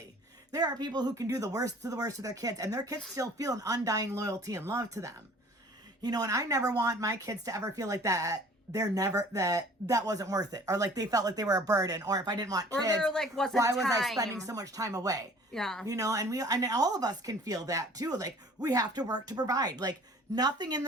There are people who can do the worst to their kids, and their kids still feel an undying loyalty and love to them. You know, and I never want my kids to ever feel like that. That wasn't worth it, or like they felt like they were a burden, or if I didn't want kids, or there, like, wasn't why was I time. spending so much time away? Yeah. You know, and all of us can feel that too. Like, we have to work to provide. Like, nothing in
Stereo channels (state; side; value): normal; both; correlation 0.50